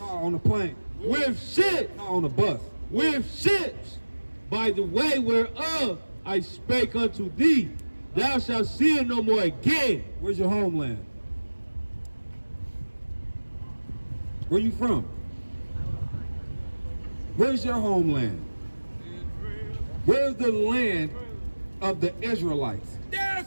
on the plane. With ships. No, on the bus. With ships. By the way whereof I spake unto thee, thou shalt see it no more again. Where's your homeland? Where you from? Where's your homeland? Where's the land of the Israelites?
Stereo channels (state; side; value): inverted; both; correlation -1.00